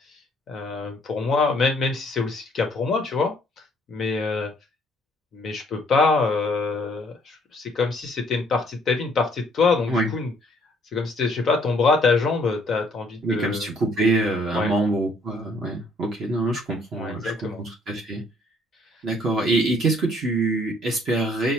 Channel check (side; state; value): both; normal; correlation 0.63